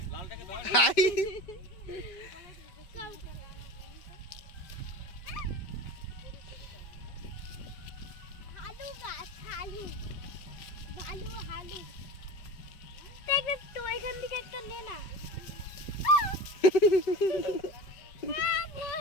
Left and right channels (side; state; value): right; late; 5.3 ms